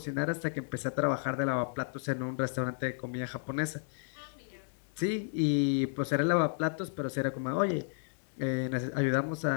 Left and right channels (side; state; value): right; silent; digital silence